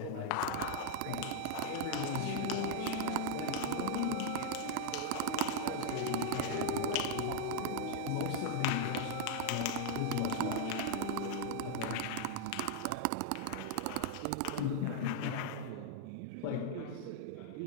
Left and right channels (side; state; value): both; different; correlation -0.01